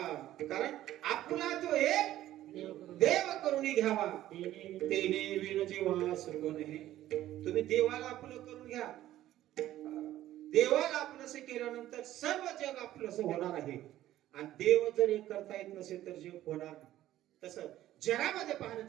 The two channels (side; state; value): left; quieter; 13.7 dB